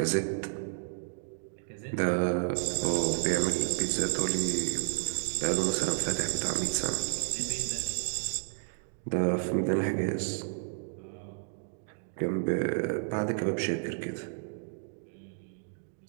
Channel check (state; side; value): silent; left; digital silence